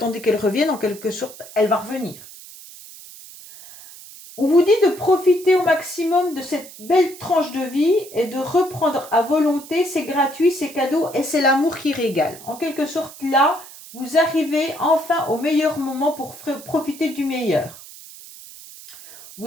qu'elle revienne, en quelque sorte, elle va revenir. On vous dit de profiter au maximum de cette belle tranche de vie et de reprendre à volonté, c'est gratuit, c'est cadeau et c'est l'amour qui régale. En quelque sorte, là, vous arrivez enfin au meilleur moment pour profiter du meilleur.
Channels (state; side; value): noise; right; hiss, 17 dB below the sound